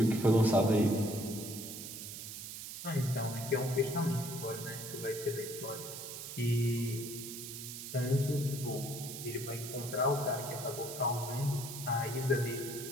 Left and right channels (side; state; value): right; noise; hiss, 9 dB below the sound